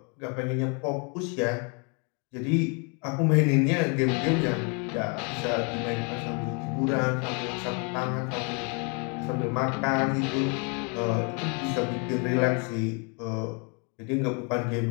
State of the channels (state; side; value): quieter; right; 35.3 dB